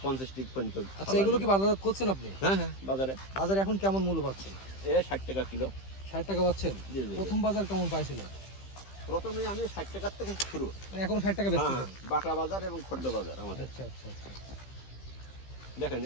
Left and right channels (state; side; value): late; right; 15 ms